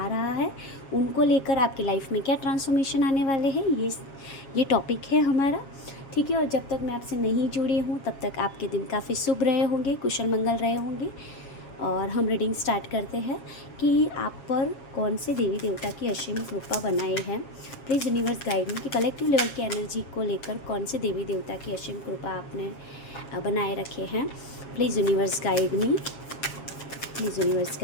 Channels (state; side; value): late; right; 7.4 ms